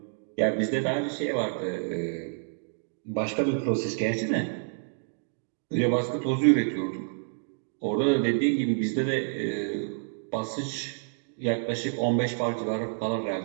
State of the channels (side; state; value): left; silent; digital silence